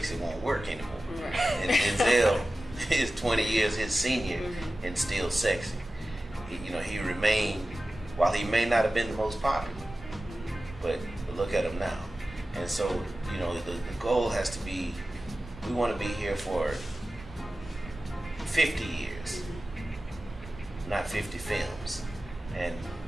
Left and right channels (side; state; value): both; normal; correlation 0.95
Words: won't work anymore. And Denzel is 20 years his senior and still sexy. He remained, while he may not have been the most popular, but look at him now. And so, the goal has to be, we want to be here for 50 years, not 50 films. And,